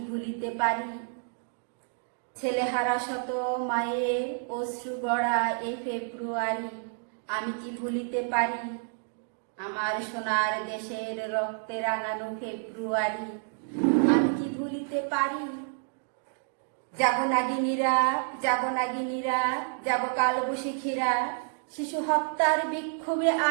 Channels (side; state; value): left; silent; 58 dB below the other